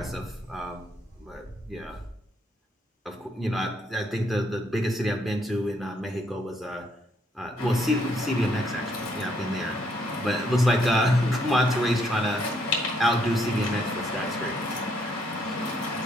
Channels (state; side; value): normal; both; correlation 0.71